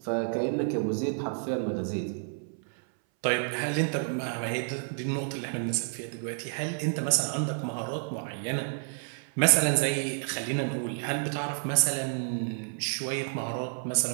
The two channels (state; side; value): silent; left; 58 dB below the other